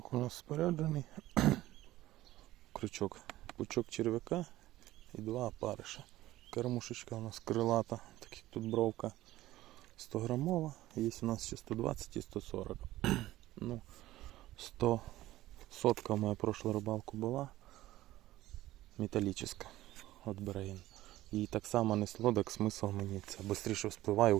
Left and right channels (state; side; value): quieter; left; 15.8 dB